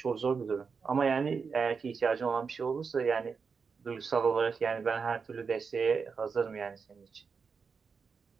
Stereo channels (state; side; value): quieter; left; 5.4 dB